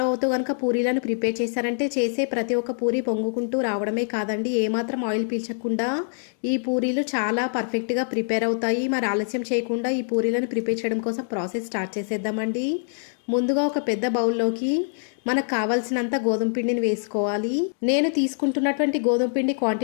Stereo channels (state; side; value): silent; right; digital silence